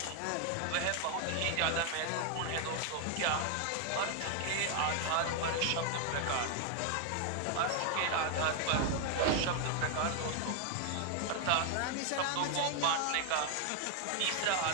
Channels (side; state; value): both; different; correlation 0.00